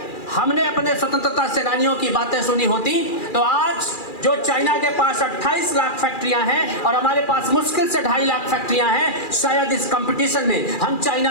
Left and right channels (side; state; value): right; late; 2.4 ms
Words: हमने अपने स्वतंत्रता सेनानियों की बातें सुनी होती तो आज जो चाइना के पास 28 लाख फैक्ट्रियां हैं और हमारे पास मुश्किल से 2.5 लाख फैक्ट्रियां हैं, शायद इस कंपटीशन में हम